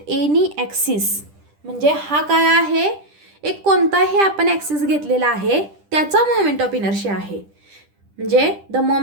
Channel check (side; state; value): left; late; 10 ms